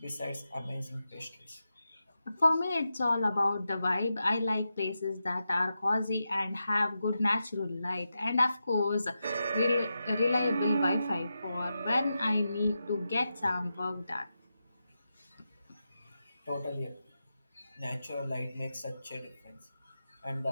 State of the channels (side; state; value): both; inverted; correlation -0.89